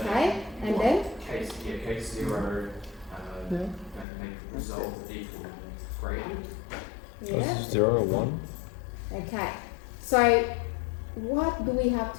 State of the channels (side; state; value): right; drops out; at 4.0 s